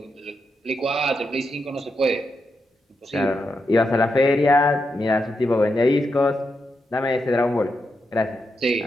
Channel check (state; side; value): normal; both; correlation 0.85